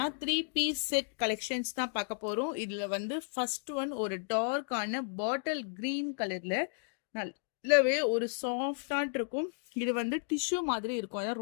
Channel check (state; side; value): silent; right; digital silence